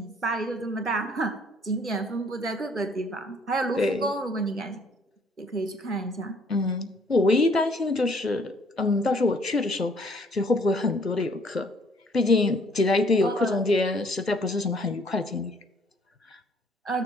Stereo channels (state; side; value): normal; both; correlation 0.61